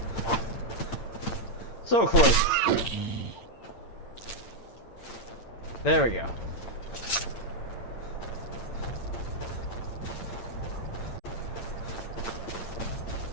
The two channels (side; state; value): right; late; 8.8 ms